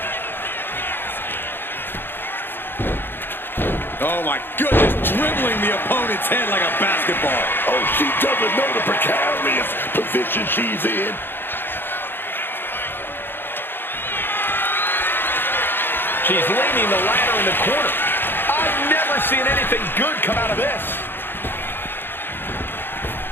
Oh my goodness, dribbling the opponent's head like a basketball. Oh, she doesn't know the precarious position she's in. She's leaning the ladder in the corner. I've never seen anything good come out of this.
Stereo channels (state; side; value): late; right; 0.10 ms